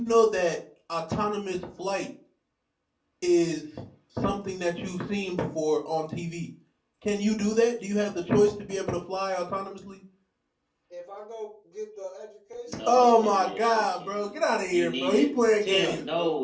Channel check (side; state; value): both; identical; correlation 1.00